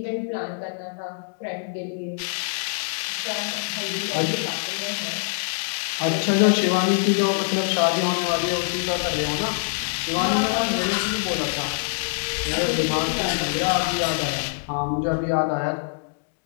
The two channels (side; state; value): right; silent; digital silence